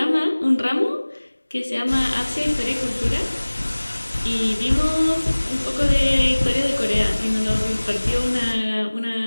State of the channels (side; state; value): both; inverted; correlation -1.00